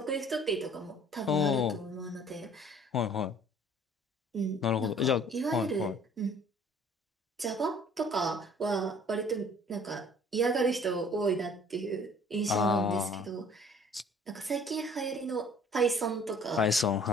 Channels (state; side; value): normal; both; correlation 0.53